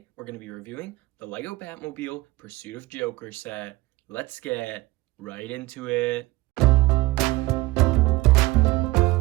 we're going to be reviewing the Lego Batmobile Pursuit of Joker set. Let's get right into it.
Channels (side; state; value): left; quieter; 20.2 dB